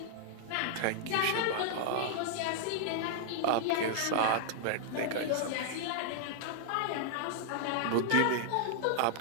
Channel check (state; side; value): different; both; correlation -0.01